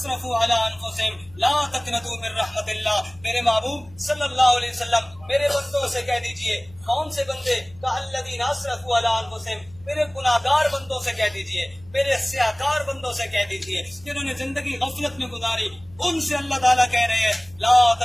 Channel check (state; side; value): noise; left; hum, 24 dB below the sound